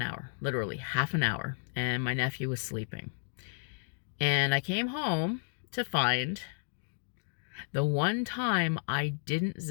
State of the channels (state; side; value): silent; right; digital silence